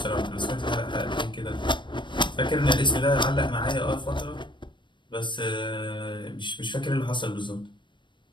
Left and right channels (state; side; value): late; right; 0.23 ms